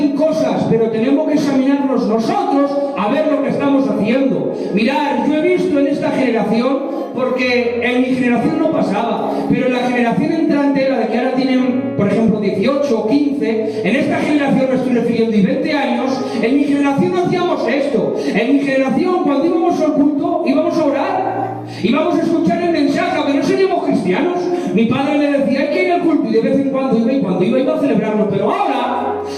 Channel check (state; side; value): identical; both; correlation 1.00